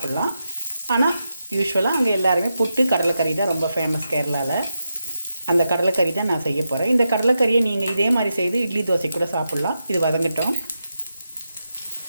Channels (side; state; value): both; inverted; correlation -0.87